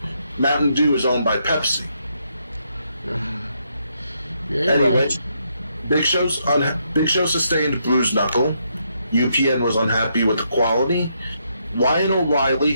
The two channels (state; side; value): inverted; both; correlation -0.77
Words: Mountain Dew is owned by Pepsi. Yeah, anyway, right. Big Show sustained bruised knuckle. UPN was unhappy with the quality. Ryan O'Reilly